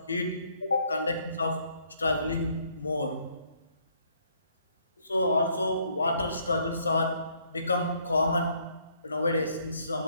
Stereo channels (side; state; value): both; inverted; correlation -0.67